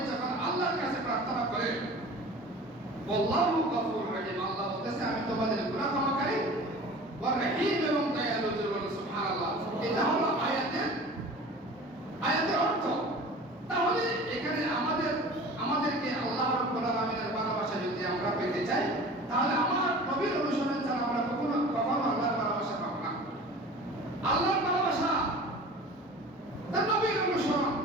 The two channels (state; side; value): normal; both; correlation 0.40